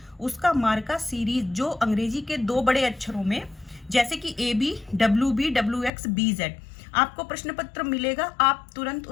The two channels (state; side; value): drops out; right; at 5.9 s